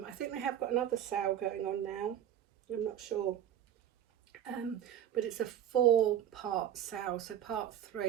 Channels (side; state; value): left; quieter; 10.3 dB